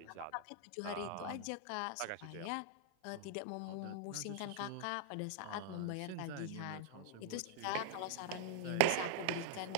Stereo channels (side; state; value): both; different; correlation 0.00